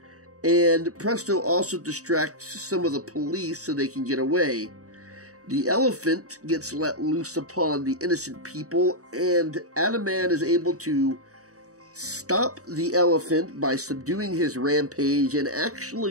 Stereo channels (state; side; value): late; left; 0.66 ms